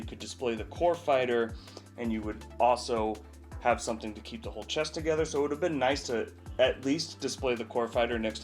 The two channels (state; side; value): identical; both; correlation 1.00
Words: could display the core fighter and you would also have something to keep the whole chest together. So it would have been nice to at least display the core fighter next